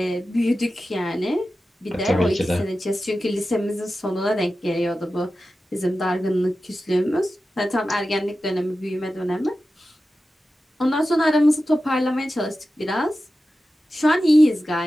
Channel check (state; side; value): normal; both; correlation 0.93